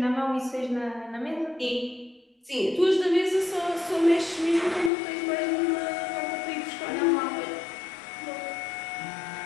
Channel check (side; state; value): right; drops out; at 4.9 s